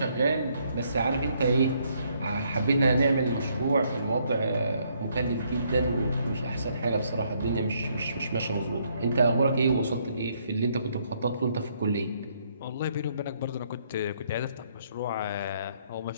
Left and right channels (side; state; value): both; inverted; correlation -0.70